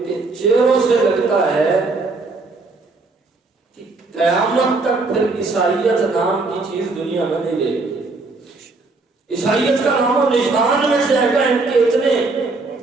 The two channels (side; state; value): left; quieter; 3.6 dB